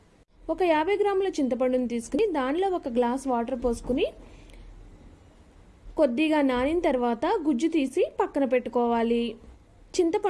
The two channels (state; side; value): identical; both; correlation 1.00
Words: ఒక 50 గ్రాముల చింతపండుని తీసుకుని దానిలో 1 గ్లాస్ వాటర్ పోసుకుని కొద్దిగా నానిన తర్వాత గుజ్జు తీసి పక్కన పెట్టుకోవాలి.